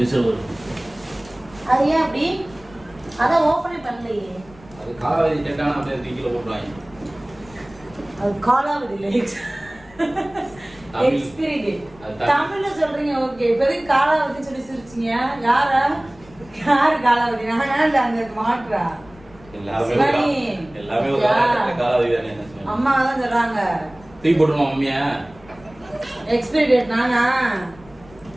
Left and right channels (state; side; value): noise; left; rumble, 23 dB below the sound